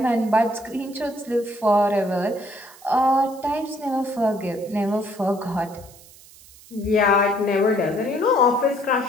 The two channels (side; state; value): right; noise; hiss, 22 dB below the sound